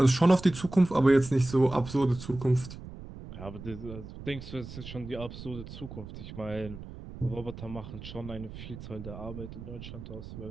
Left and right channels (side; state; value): right; noise; rumble, 12 dB below the sound